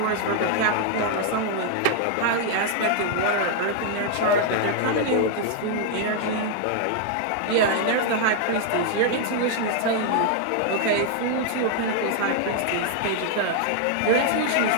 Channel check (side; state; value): both; different; correlation 0.00